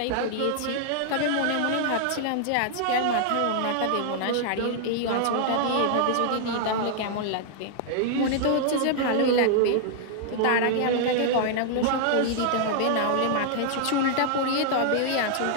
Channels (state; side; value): different; both; correlation 0.00